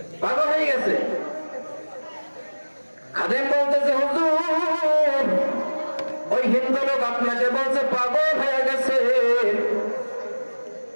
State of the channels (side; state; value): both; inverted; correlation -1.00